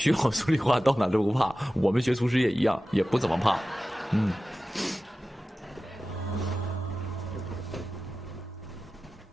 好数理化，到哪都不怕。我们学厨师也一样，也不怎么怕，嗯。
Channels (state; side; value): normal; both; correlation 0.94